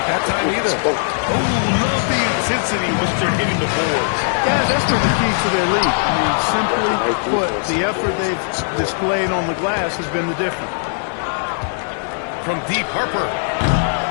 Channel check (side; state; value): right; silent; 63 dB below the other